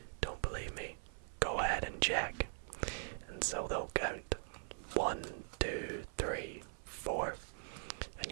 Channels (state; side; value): silent; left; 50 dB below the other